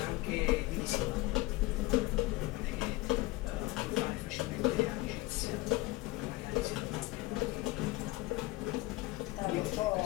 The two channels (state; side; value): quieter; right; 20.4 dB